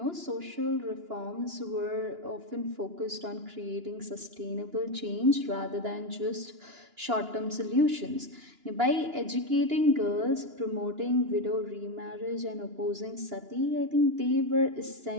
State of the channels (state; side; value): late; left; 2.9 ms